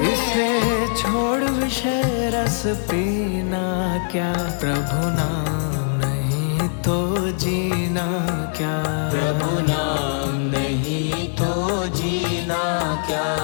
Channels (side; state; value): right; silent; digital silence